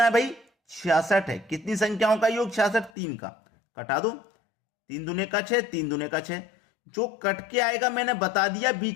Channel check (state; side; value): drops out; right; at 2.9 s